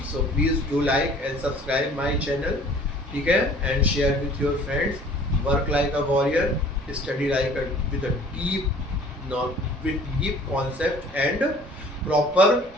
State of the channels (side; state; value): both; normal; correlation 0.51